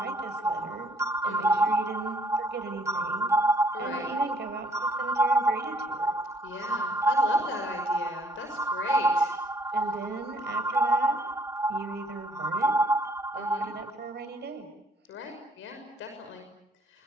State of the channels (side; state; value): both; normal; correlation 0.65